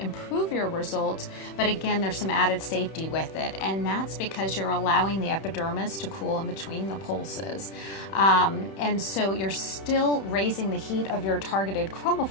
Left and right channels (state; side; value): late; right; 31 ms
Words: your results, but again, there's some added safety with it, and that's because you're allowing the epidermis to cool in between the pulses. And so you're still raising the heat of your targeted